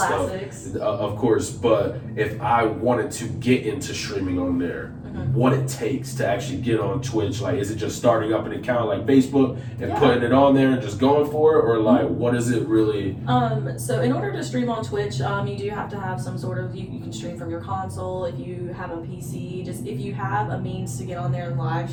stuff. Of course, but if I wanted to get into streaming on there, what it takes to actually get on Twitch, like is it just starting up an account like Facebook and putting it on there and just going for it, or like what is it really? So in order to stream on Twitch, you do have to have some sort of, you can stream from your console if you have a PC. Just if you have a means to get on there and live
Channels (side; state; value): both; identical; correlation 1.00